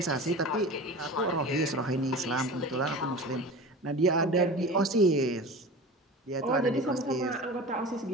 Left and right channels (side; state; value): both; normal; correlation 0.34